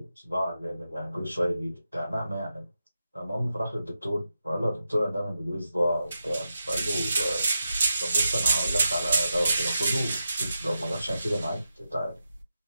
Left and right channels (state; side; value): inverted; both; correlation -0.88